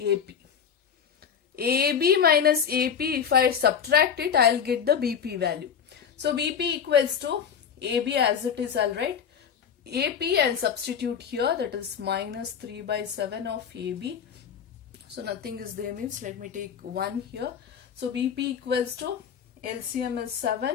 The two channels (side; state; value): right; quieter; 7.5 dB